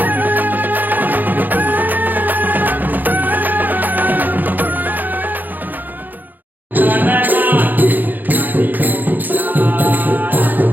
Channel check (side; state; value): left; late; 0.086 ms